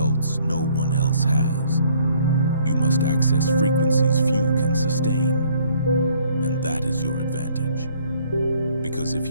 no one else has, you must access frequencies few can sustain, and that is your advantage. Because if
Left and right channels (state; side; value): inverted; both; correlation -0.62